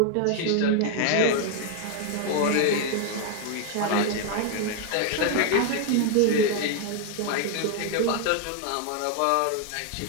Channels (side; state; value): both; different; correlation 0.01